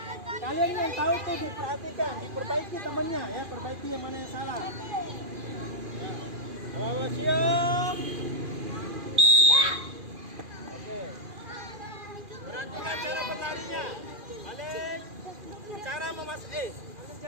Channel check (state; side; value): late; left; 2.4 ms